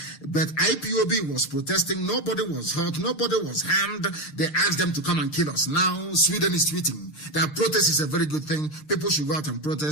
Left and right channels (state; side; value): late; right; 6.6 ms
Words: But IPOB was protesting. Nobody was hurt. Nobody was harmed. They asked them to come and kill us. Now Sweden is tweeting that protest is a very good thing. People should go out and